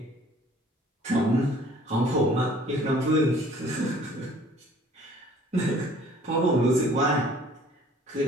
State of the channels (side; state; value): both; normal; correlation 0.54